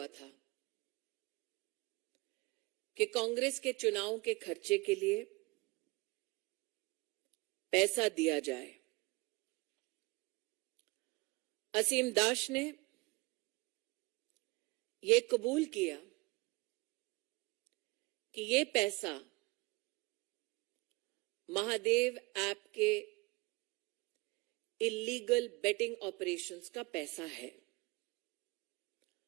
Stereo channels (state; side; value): quieter; left; 25.1 dB